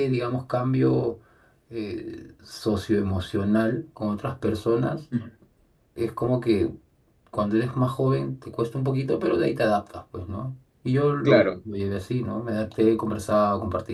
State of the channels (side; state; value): both; identical; correlation 1.00